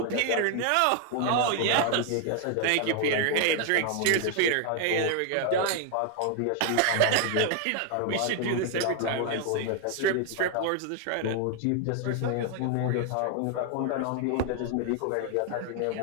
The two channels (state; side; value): different; both; correlation 0.00